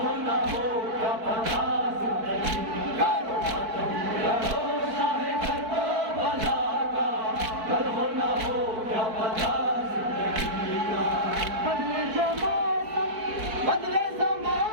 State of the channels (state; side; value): late; left; 4.6 ms